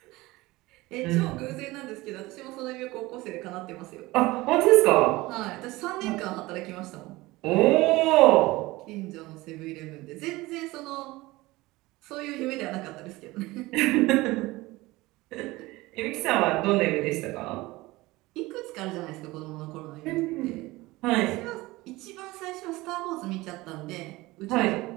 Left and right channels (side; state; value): left; quieter; 20.2 dB